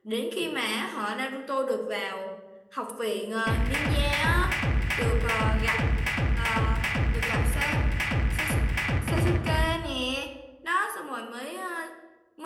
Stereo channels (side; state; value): both; identical; correlation 1.00